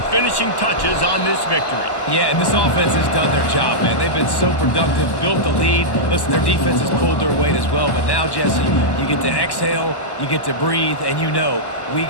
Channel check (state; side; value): late; right; 1.1 ms